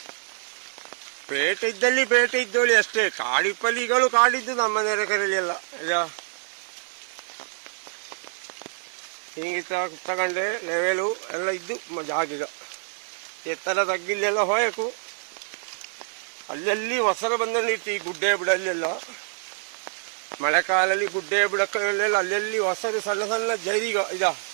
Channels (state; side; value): silent; left; 61 dB below the other